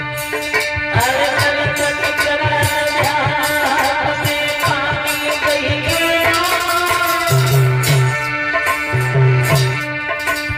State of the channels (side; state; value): both; identical; correlation 1.00